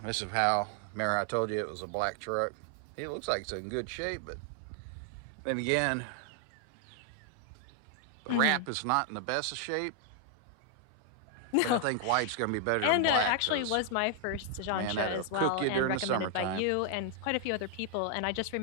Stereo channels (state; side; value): different; both; correlation 0.00